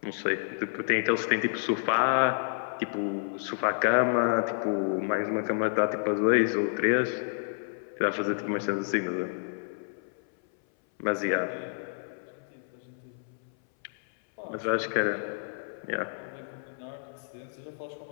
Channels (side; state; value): right; silent; 58 dB below the other